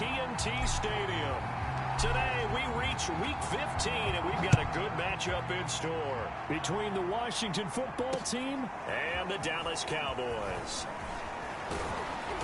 Stadium. Today, we reach Week 15, and we've got a good matchup in store between the Washington football team and the Dallas Cowboys.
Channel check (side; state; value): both; identical; correlation 1.00